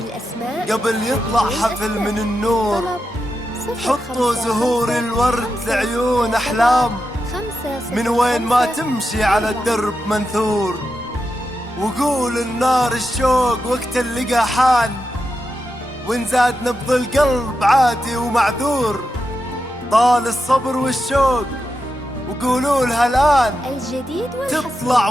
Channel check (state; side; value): normal; both; correlation 0.88